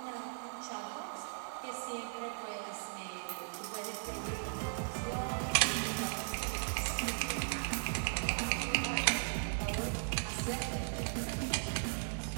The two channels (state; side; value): silent; left; digital silence